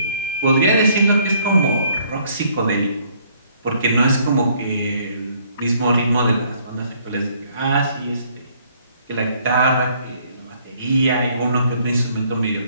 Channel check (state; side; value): inverted; both; correlation -0.64